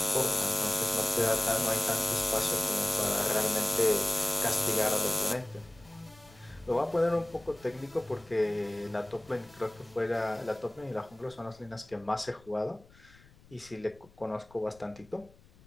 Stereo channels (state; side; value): noise; left; rumble, 26 dB below the sound